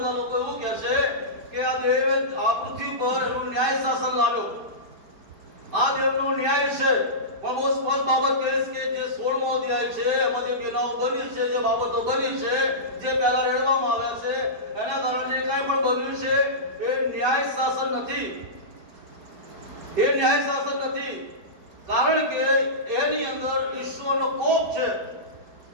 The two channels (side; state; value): left; late; 4.7 ms